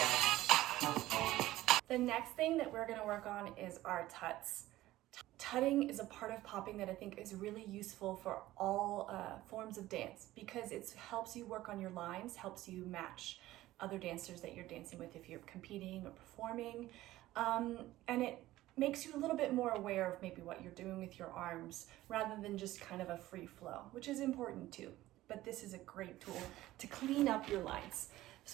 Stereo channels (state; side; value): quieter; left; 16.0 dB